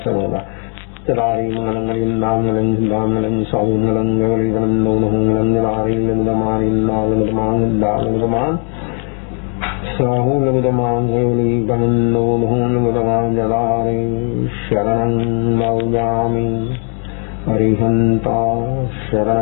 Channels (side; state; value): right; quieter; 36.9 dB